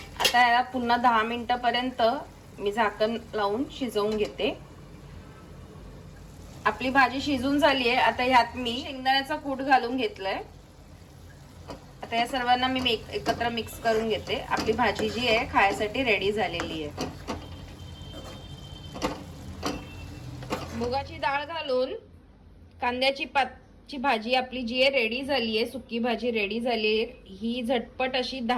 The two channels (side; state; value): both; identical; correlation 1.00